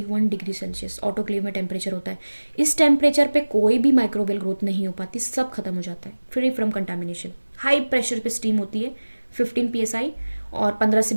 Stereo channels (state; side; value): inverted; both; correlation -1.00